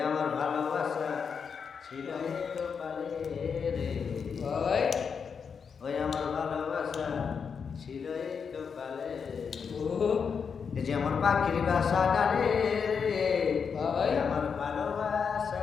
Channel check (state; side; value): quieter; right; 6.2 dB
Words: আমার ভালোবাসা ছিল তো পালে রে ওই আমার ভালোবাসা ছিল তো পালে এই যে আমার পাখির বাসা ডালে রে আমার ভালোবাসা